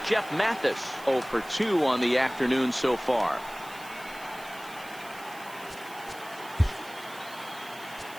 Jeff Mathis, 0 for 2 on the afternoon so far.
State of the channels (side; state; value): right; noise; hiss, 19 dB below the sound